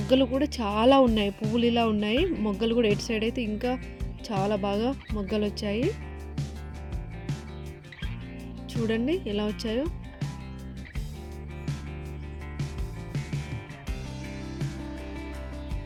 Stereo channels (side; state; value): both; identical; correlation 1.00